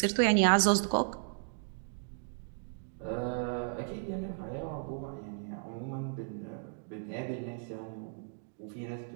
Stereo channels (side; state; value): left; silent; digital silence